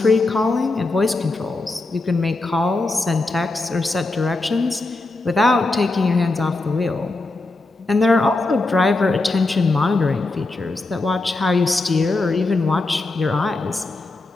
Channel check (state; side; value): quieter; right; 3.2 dB